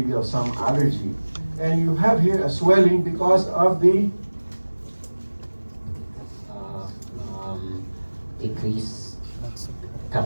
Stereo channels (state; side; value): inverted; both; correlation -1.00